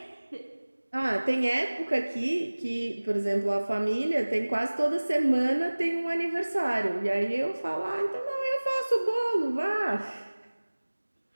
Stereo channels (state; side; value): inverted; both; correlation -1.00